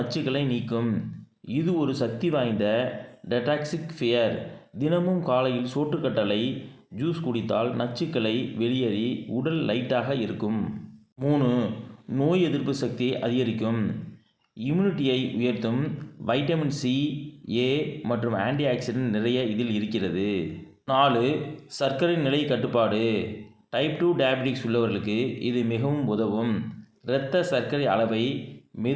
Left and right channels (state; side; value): identical; both; correlation 1.00